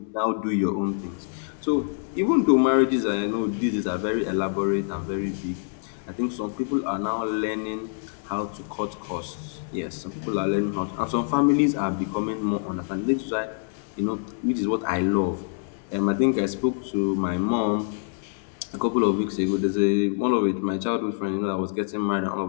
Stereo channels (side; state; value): right; silent; 61 dB below the other